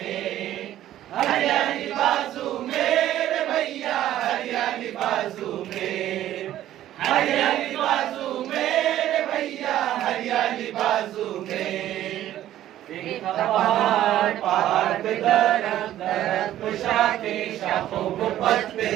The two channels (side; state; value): left; quieter; 12.8 dB